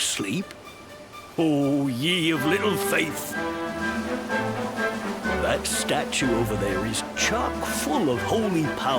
Oh, ye of little faith! That statue over there is chock full of holy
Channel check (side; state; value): both; identical; correlation 1.00